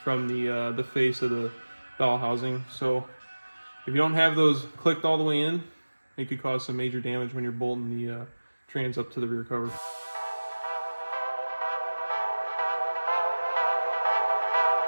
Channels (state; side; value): inverted; both; correlation -1.00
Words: from the face of the bell housing. So if you don't have those clicked all the way in, it could cause some major damage when you're bolting the trans up to the rear cover.